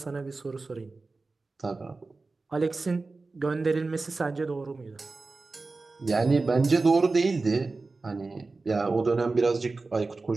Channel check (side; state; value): left; quieter; 3.7 dB